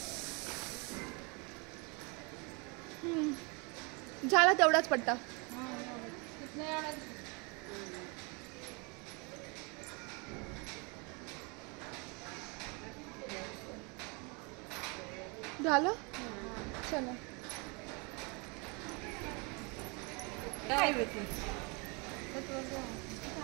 झाला तेवढाच पट्टा. झालं चला.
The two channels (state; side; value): quieter; left; 31.1 dB